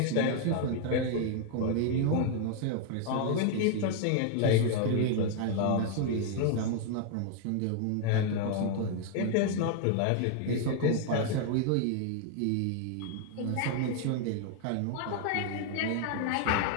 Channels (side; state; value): both; different; correlation 0.00